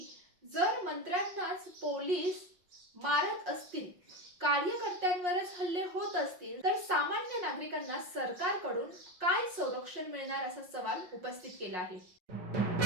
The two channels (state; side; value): late; left; 5.6 ms